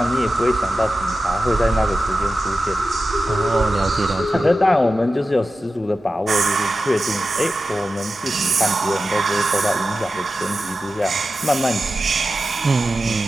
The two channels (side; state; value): both; normal; correlation 0.93